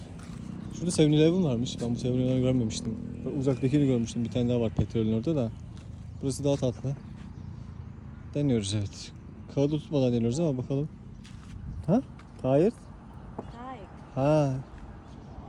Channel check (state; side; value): identical; both; correlation 1.00